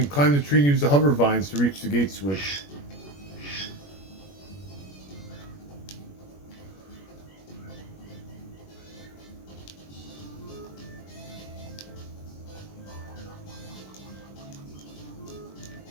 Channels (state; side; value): late; right; 21 ms